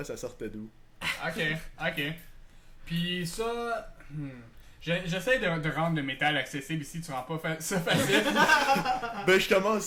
ça sortait d'où. Ok. Puis ça... J'essaie de rendre le métal accessible ici, tu rends pas ça facile. Ben je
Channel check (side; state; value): both; identical; correlation 1.00